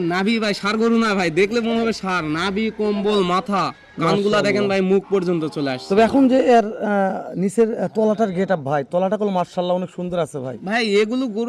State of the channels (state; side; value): identical; both; correlation 1.00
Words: নাভি ভাই ষাঁড় গরু না ভাই, দেখলে মনে হবে ষাঁড়। নাভি, কম্বল, মাথা, কানগুলা দেখেন ভাই, মুখ পর্যন্ত চলে আসছে। তবে এখন যে এর নিচের তলাটার গেটআপ ভাই, তলাটা কল মাশাআল্লাহ অনেক সুন্দর আছে ভাই। ভাই এগুলো